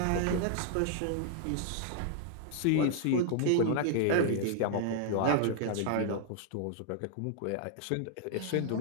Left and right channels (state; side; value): different; both; correlation 0.00